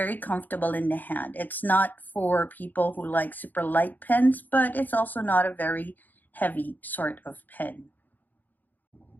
comfortable in the hand. It's not for people who like super light pens, but it's also not a very heavy sort of pen.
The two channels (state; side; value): late; right; 0.085 ms